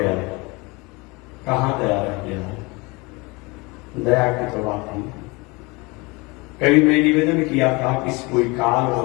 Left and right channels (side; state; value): right; quieter; 26.0 dB